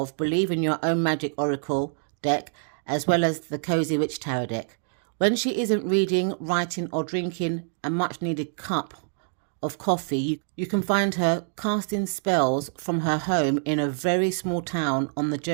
Believe in Your Own Magic Oracle deck, as well as the Cozy Witch Tarot deck. When she isn't reading, writing, or drinking a much-needed cup of coffee, you can find her casting spells from her home in a very small town on the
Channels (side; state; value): left; silent; digital silence